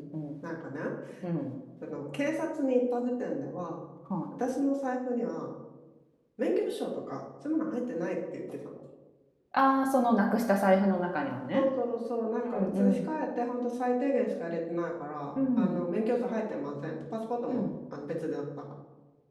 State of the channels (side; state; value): both; identical; correlation 1.00